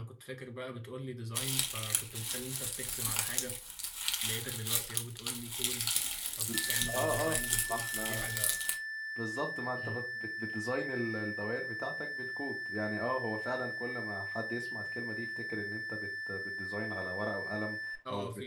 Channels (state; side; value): identical; both; correlation 1.00